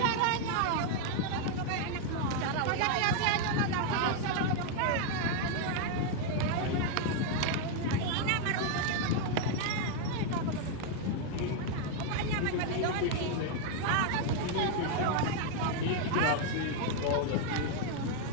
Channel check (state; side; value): different; both; correlation 0.01